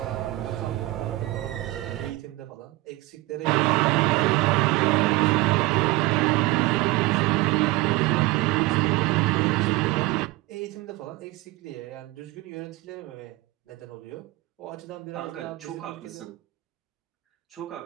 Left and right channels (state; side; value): quieter; left; 19.5 dB